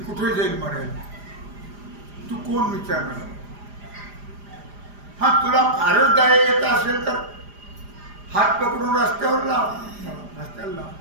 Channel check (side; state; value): left; late; 4.9 ms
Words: कुठे जाईल मारायला, तू कोण विचारणार. हा तुला फारच दया येत असेल तर हात पकडून रस्त्यावर लाव, रस्त्याला लाव.